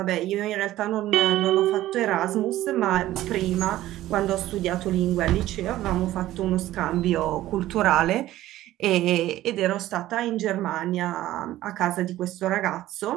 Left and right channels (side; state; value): left; quieter; 14.9 dB